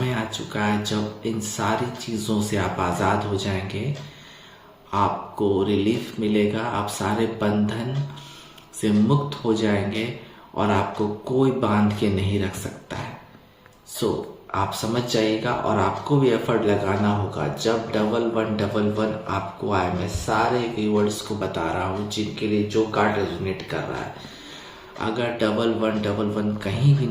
आ चुका है जब इन सारी चीज़ों से आप आज़ाद हो जाएंगे, आपको रिलीफ मिलेगा, आप सारे बंधन से मुक्त हो जाएंगे और आपको कोई बांध के नहीं रख सकता है। आप समझ जाइएगा और आपको भी एफर्ट लगाना होगा। जब 1111 आपको आए, मैं सारे व्यूअर्स को बता रहा हूँ जिनके लिए जो कार्ड रेजोनेट कर रहा है, अगर 1111 कहीं भी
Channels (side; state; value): both; identical; correlation 1.00